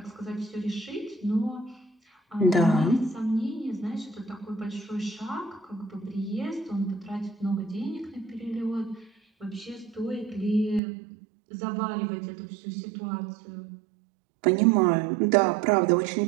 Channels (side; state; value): left; drops out; at 10.8 s